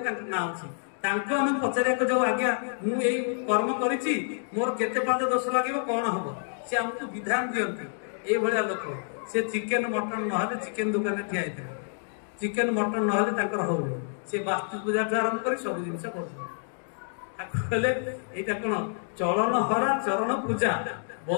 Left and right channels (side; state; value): right; silent; digital silence